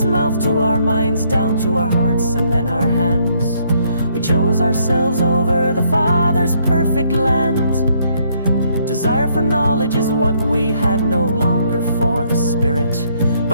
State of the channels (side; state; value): both; inverted; correlation -0.69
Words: mouth to our minds, down to our hearts and then our hands. We chose ourselves over the Father's perfect land. Desire for knowledge is what we had, no longer for the Spirit,